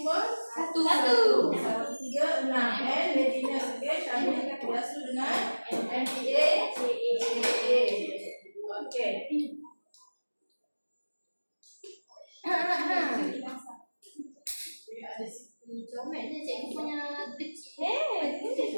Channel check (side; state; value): both; inverted; correlation -1.00